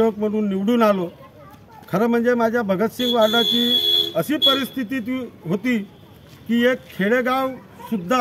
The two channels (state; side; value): identical; both; correlation 1.00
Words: म्हणून निवडून आलो। खरं म्हणजे माझ्या भगतसिंग वार्डाची अशी परिस्थिती होती की एक